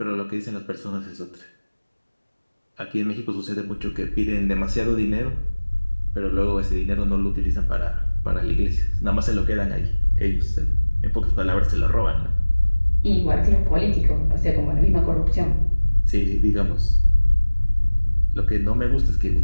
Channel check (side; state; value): both; inverted; correlation -1.00